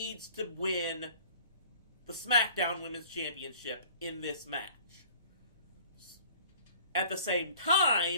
to win the SmackDown Women's Championship in this match. At the same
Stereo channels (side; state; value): both; inverted; correlation -0.49